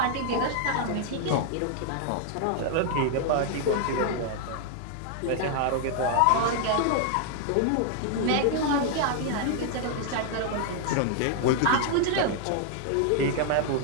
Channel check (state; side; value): different; both; correlation 0.00